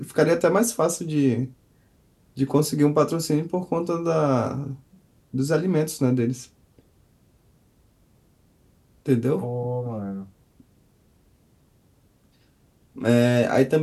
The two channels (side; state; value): both; identical; correlation 1.00